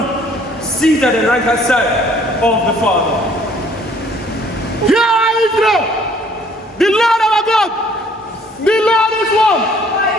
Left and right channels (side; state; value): both; normal; correlation 0.59